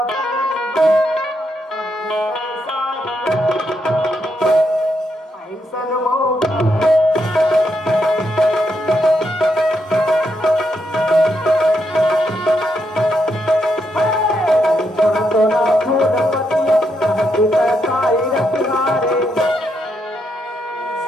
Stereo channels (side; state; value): both; normal; correlation 0.80